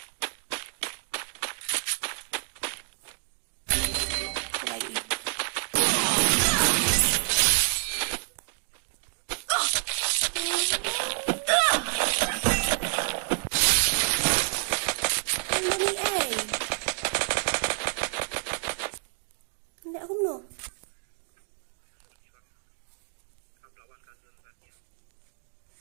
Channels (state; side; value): silent; left; digital silence